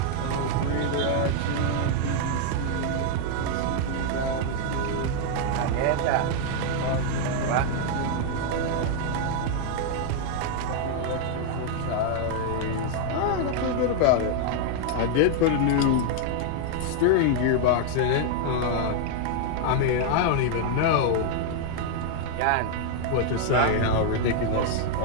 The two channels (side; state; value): both; different; correlation 0.00